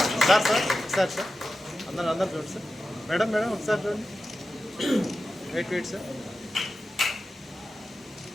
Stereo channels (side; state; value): both; normal; correlation 0.92